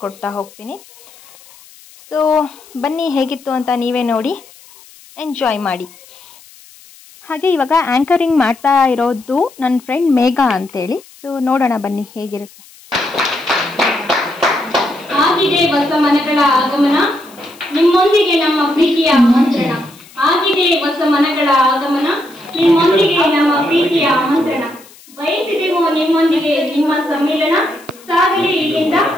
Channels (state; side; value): noise; left; hiss, 24 dB below the sound